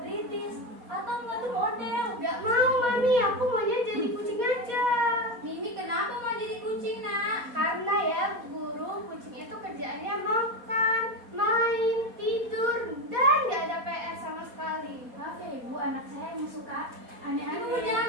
atau enggak tuh model? Gak mau Mami, aku maunya jadi kucing aja. Mimi kenapa mau jadi kucing nak? Karena ya guru, kucing itu kerjaannya makan, main, tidur, dan gak ada PR sama sekali. Maaf ya Ibu, anak saya yang suka Ibu aneh-aneh. jangan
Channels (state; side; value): late; left; 4.2 ms